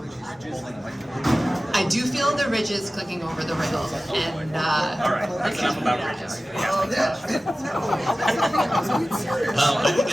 I do feel the ridges clicking over the rail, and All right, that's enough about ridges. I think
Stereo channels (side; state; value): both; normal; correlation 0.96